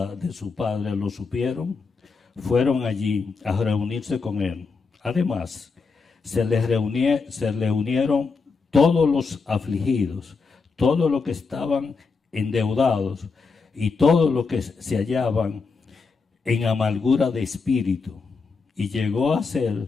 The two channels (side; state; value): right; quieter; 4.7 dB